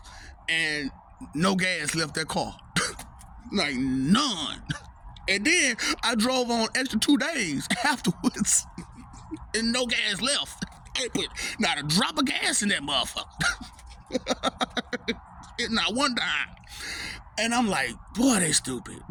and no gas left that car. Like, none. And then I drove on extra 2 days afterwards, and no gas left. I ain't put not a drop of gas in that motherfucker. Not one dime. And I'm like, boy, they stupid.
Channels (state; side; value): identical; both; correlation 1.00